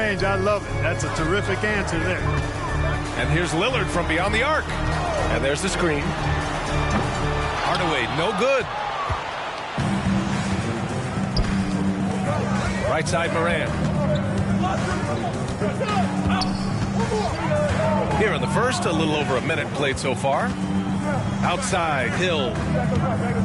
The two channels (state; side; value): identical; both; correlation 1.00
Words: I love it. That's a terrific answer there. And here's Lillard from beyond the arc. And there's the screen. Hardaway, no good. Right side, Morant. Here in the first, a little over a minute played so far. Outside, Hill.